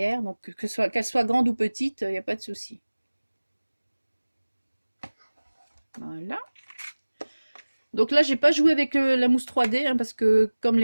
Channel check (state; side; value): inverted; both; correlation -1.00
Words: donc qu'elle soit grande ou petite, il n'y a pas de souci. Voilà. Donc là, j'ai pas joué avec la mousse 3D hein, parce que comme